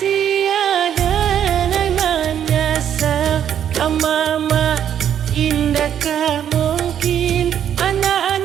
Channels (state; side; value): quieter; left; 9.5 dB